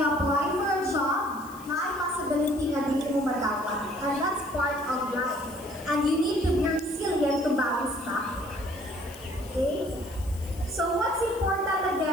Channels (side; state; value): left; noise; hiss, 20 dB below the sound